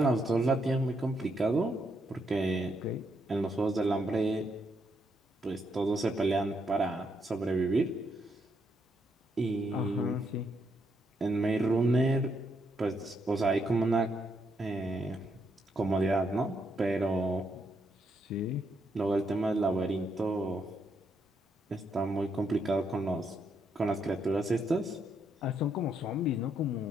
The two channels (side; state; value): both; normal; correlation 0.77